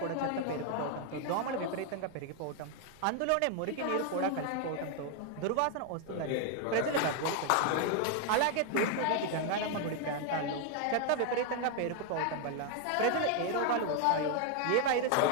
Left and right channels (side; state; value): both; different; correlation 0.00